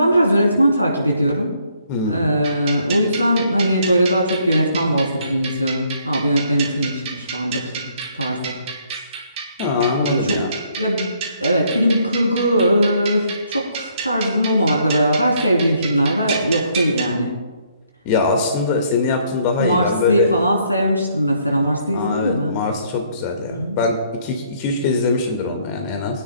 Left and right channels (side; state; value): both; inverted; correlation -0.67